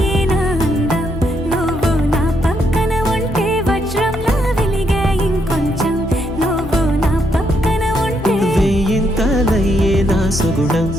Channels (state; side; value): normal; both; correlation 0.76